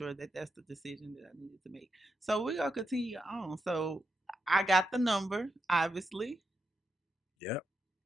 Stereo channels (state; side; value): normal; both; correlation 0.84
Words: that that's the decision that I needed to make. So we're going to continue on. So I got the number, obviously. Yep.